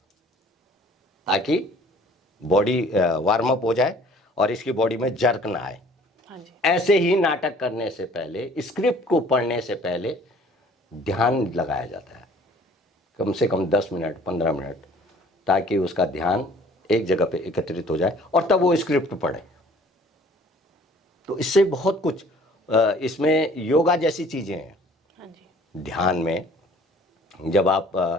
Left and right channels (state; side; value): normal; both; correlation 0.53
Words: ताकि बॉडी वार्म अप हो जाए और इसकी बॉडी में जर्क ना आए। हाँ जी। ऐसे ही नाटक करने से पहले, स्क्रिप्ट को पढ़ने से पहले ध्यान लगाया जाता है, कम से कम 10 मिनट 15 मिनट, ताकि उसका ध्यान एक जगह पे एकत्रित हो जाए और तब वो स्क्रिप्ट पढ़े। तो इससे बहुत कुछ, इसमें योगा जैसी चीज़ें हैं। हाँ जी। ध्यान में जब